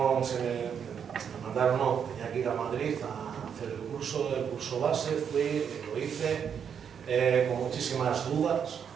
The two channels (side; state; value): left; quieter; 7.6 dB